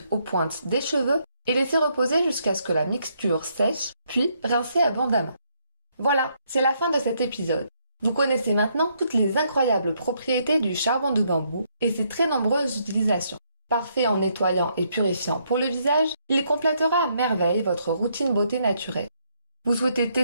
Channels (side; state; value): both; inverted; correlation -0.73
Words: aux pointes des cheveux et laissez reposer jusqu'à ce que la mixture sèche, puis rincez abondamment. Voilà, c'est la fin de cet épisode. Vous connaissez maintenant toutes les incroyables propriétés du charbon de bambou et ses très nombreuses utilisations. Parfait en nettoyant et purifiant pour le visage, il complétera à merveille votre routine beauté naturelle. Vous souhaitez